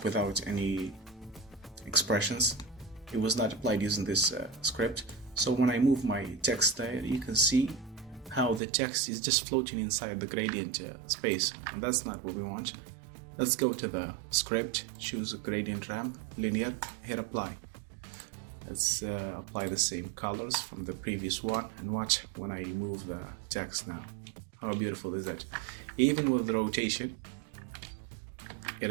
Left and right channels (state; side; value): drops out; left; at 8.6 s